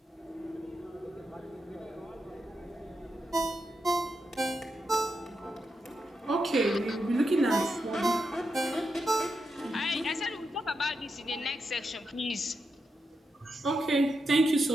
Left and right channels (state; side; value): normal; both; correlation 0.86